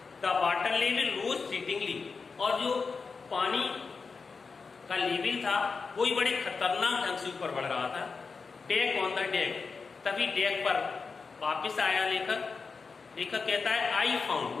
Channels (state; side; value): quieter; right; 4.8 dB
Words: The water level rose fleetingly. और जो पानी का लेवल था वो ही बड़े खतरनाक ढंग से ऊपर बढ़ रहा था. Deck on the deck. तभी डेक पर वापस आया लेखक कहता है आई फाउंड,